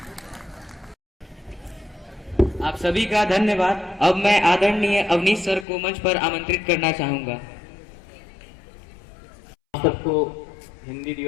आप सभी का धन्यवाद। अब मैं आदरणीय अवनीश सर को मंच पर आमंत्रित करना चाहूंगा। आप सबको हिंदी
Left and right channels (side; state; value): right; drops out; at 5.7 s